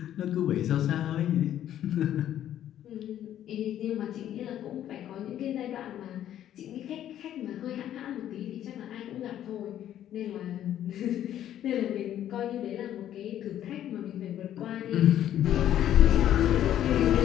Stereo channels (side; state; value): right; quieter; 11.3 dB